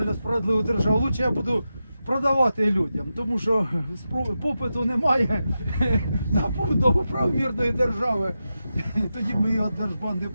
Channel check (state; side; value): inverted; both; correlation -0.90